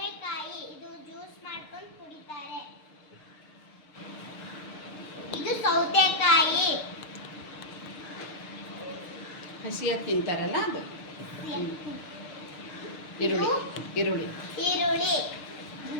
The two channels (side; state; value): right; late; 6.7 ms